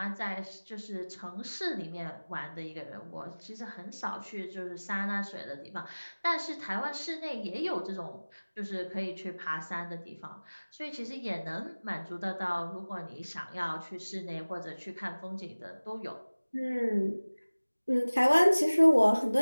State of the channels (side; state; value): both; inverted; correlation -1.00